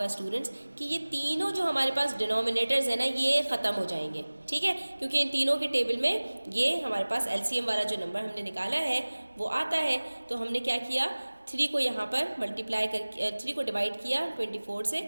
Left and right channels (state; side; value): inverted; both; correlation -1.00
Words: स्टूडेंट्स कि ये तीनों जो हमारे पास डिनोमिनेटर्स है ना ये ख़त्म हो जाएंगे, ठीक है, क्योंकि इन तीनों के टेबल में ये हमारे पास एलसीएम वाला जो नंबर हमने निकाला है वो आता है। तो हमने क्या किया, 3 को यहाँ पर मल्टीप्लाई कर 3 को डिवाइड किया 24 से